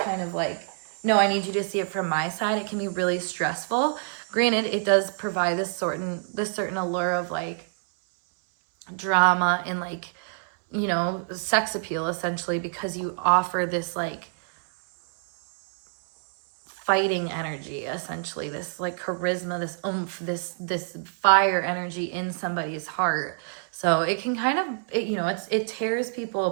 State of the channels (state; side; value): silent; left; 61 dB below the other